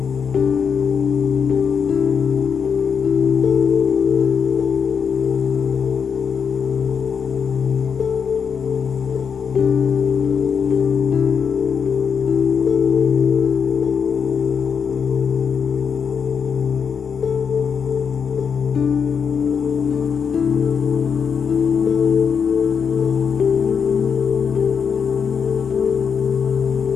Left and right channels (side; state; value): right; quieter; 6.6 dB